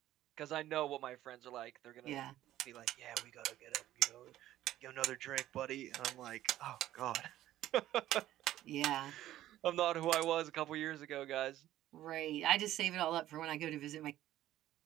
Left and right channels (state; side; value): quieter; left; 13.7 dB